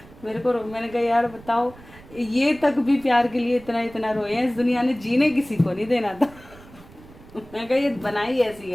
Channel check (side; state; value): right; noise; rumble, 21 dB below the sound